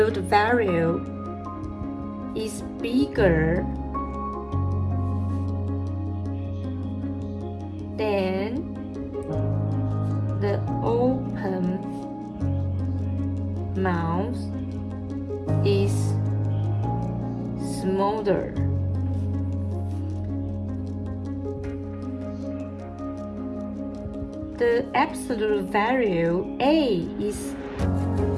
value is bigger than the open mouth is smaller. The absolute value A is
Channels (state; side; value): identical; both; correlation 1.00